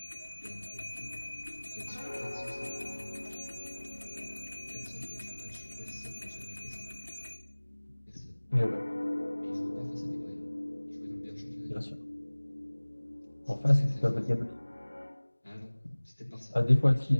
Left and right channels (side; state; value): both; inverted; correlation -1.00